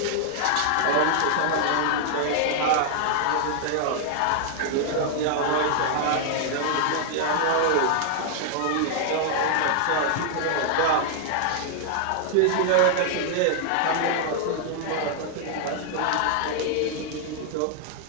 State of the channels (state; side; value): different; both; correlation 0.00